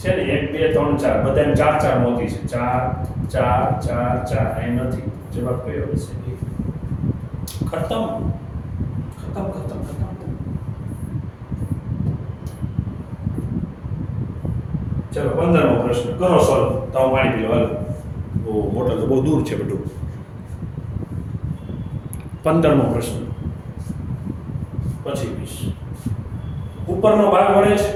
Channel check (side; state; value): both; identical; correlation 1.00